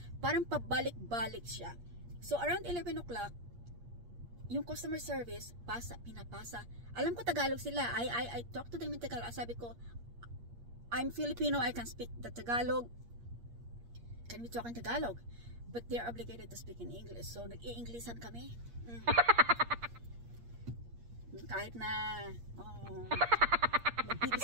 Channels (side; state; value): left; late; 8.5 ms